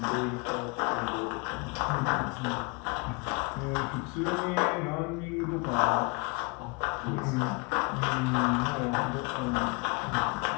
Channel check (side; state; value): right; quieter; 30.0 dB